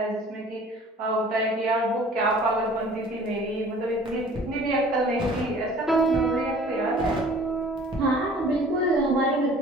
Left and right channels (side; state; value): both; normal; correlation 0.49